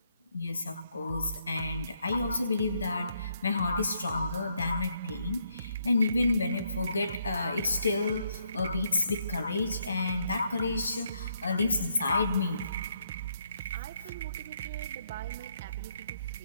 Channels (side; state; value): both; inverted; correlation -0.74